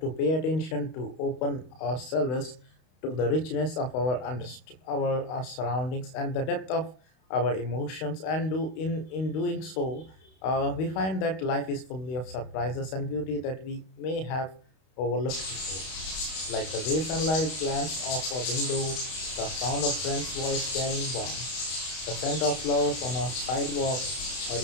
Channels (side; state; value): right; late; 32 ms